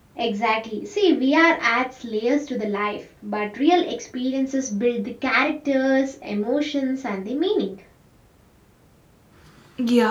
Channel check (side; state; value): both; identical; correlation 1.00